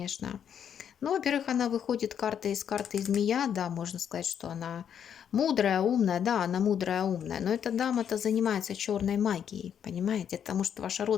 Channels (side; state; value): right; quieter; 8.6 dB